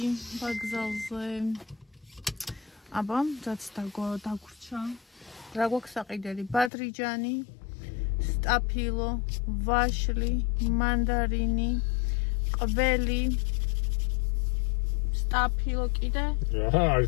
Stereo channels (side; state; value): right; drops out; at 6.7 s